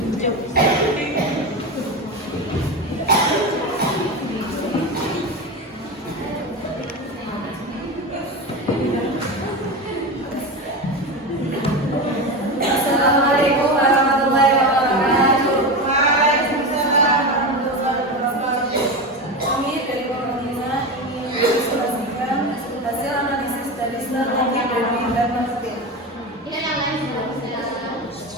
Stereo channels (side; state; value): both; normal; correlation 0.21